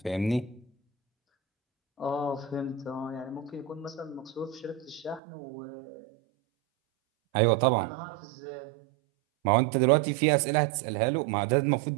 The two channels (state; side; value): drops out; left; at 5.2 s